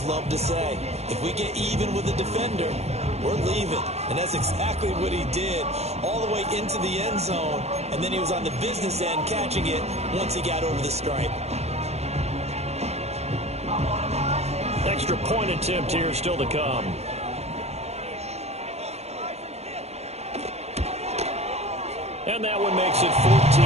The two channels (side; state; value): left; late; 0.31 ms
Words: love to say? If we get even with the defender, we're leaving. And that's exactly what he did, all the way into the end zone. And then he was on the business end catching it once he got over the stripe. Extra point attempt here still to come. And that one makes it